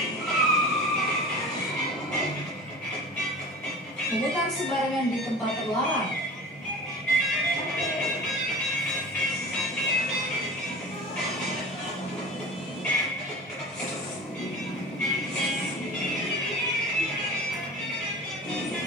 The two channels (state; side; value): normal; both; correlation 0.37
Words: memutar sembarangan di tempat terlarang,